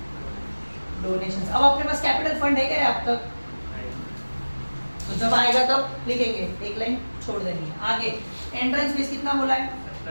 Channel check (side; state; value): both; inverted; correlation -1.00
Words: डोनेशंस। अब अपने पास कैपिटल फंड है क्या अब तक? तो जब आएगा तब लिखेंगे, एक लाइन छोड़ देंगे। आगे एंट्रेंस फीस कितना बोला है?